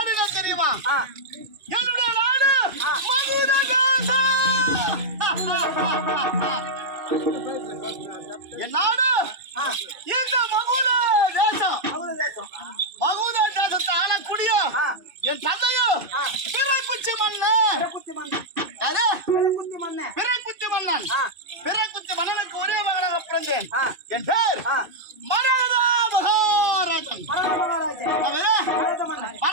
என்ன தெரியுமா என்னுடைய நாடு மகுட தேசம் என் நாடு இந்த மகுட தேசம் மகுட தேசத்தை ஆளக்கூடிய என் தந்தையும் பிறைக்குச்சி மன்னன் பிறைக்குச்சி மன்னன் பிறைக்குச்சி மன்னனுக்கு ஒரே மகனாக பிறந்தேன் என் பேர் மரகதா மகாராஜன்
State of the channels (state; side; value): late; left; 2.5 ms